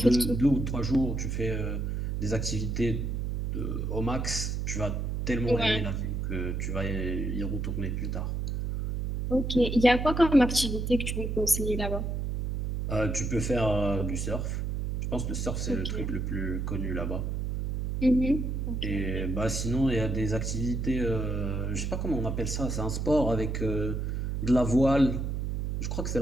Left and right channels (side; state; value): right; noise; hum, 1 dB below the sound